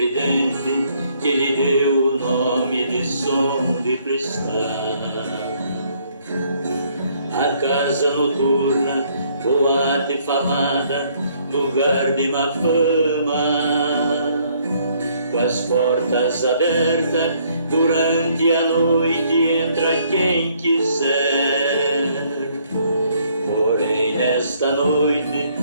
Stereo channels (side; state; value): both; inverted; correlation -0.66